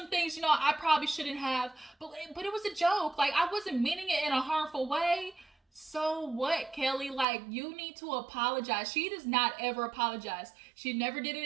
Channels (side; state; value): left; drops out; at 7.2 s